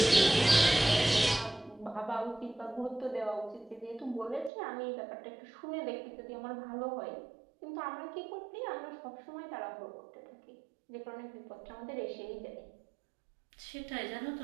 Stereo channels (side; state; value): left; drops out; at 4.5 s